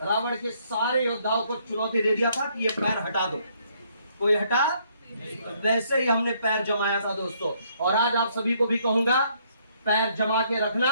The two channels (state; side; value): inverted; both; correlation -0.68